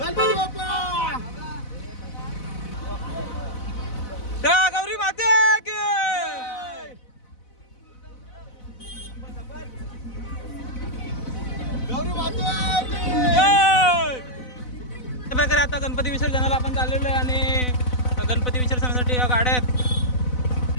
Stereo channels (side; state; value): right; late; 4.0 ms